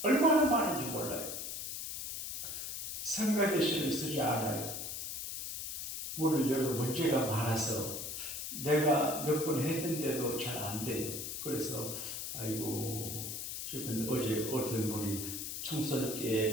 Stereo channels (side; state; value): left; noise; hiss, 5 dB below the sound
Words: 얼마나 많은지 몰라요. 성가대신을 쓰지 않아요. 문을 열어 문제가 많아서 내가 몇 번 했는데도 잘 안 돼요. 그래서 아이고 지금 어제 어떤 분이 청소년께